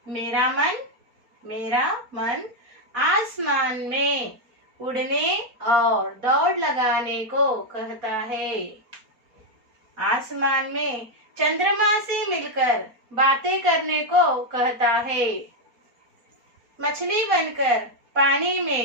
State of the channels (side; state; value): left; late; 4.2 ms